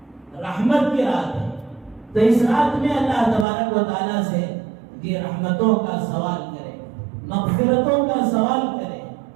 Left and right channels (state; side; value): drops out; left; at 3.5 s